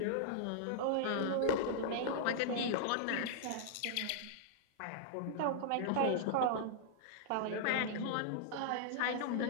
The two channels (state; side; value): different; both; correlation -0.01